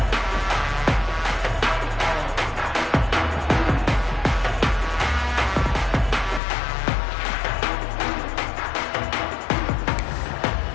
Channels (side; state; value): right; drops out; at 6.4 s